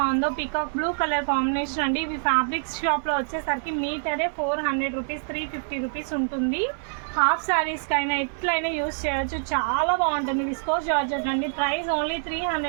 పికాక్ బ్లూ కలర్ కాంబినేషన్ అండి. ఇవి ఫ్యాబ్రిక్స్ షాప్లో వచ్చేసరికి మీటరే 400 రూపీస్ 350 రూపీస్ ఉంటుంది. హాఫ్ శారీస్కైనా ఎట్లయినా యూస్ చేయొచ్చు. చాలా బాగుంటుంది. విస్కోస్ జార్జెట్ అండి. ప్రైస్ ఓన్లీ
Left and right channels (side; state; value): left; silent; digital silence